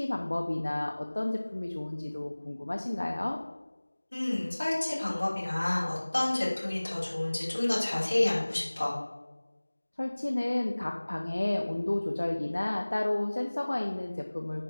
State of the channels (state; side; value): inverted; both; correlation -1.00